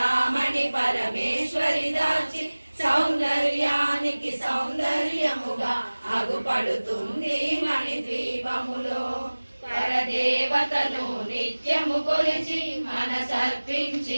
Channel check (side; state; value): both; inverted; correlation -1.00